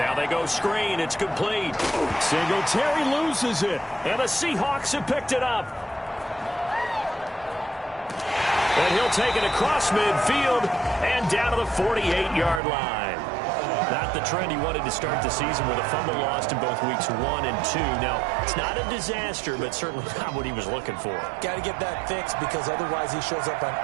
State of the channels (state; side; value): drops out; left; at 12.6 s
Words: they go screen. It's complete. Singletary loses it, and the Seahawks have picked it up. And he'll take it across midfield and down to the 48-yard line. Not the trend he wanted to start the season with a fumble lost in both weeks 1 and 2. Now, it's not a disaster, but certainly not what he was looking for. Got to get that fixed because otherwise he shows up on